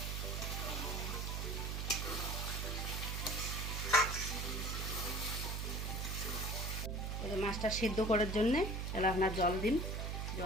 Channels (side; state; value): right; noise; hum, 2 dB below the sound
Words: মাছটা সিদ্ধ করার জন্যে এলা আপনার জল দিন,